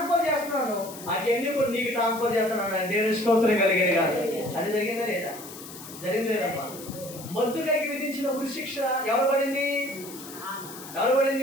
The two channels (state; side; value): noise; left; hiss, 14 dB below the sound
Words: చేస్తున్నాను, అవన్నీ కూడా నీకు ట్రాన్స్ఫర్ చేస్తున్నాను. దేవుని స్తోత్రం కలిగేది కాదు. అది జరిగిందా లేదా? జరిగింది లేదమ్మా. మొద్దుకైకి విధించిన ఉరిశిక్ష ఎవరు పడింది?